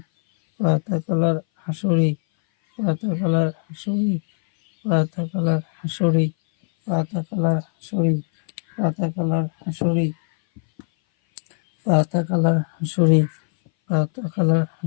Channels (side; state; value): right; silent; 59 dB below the other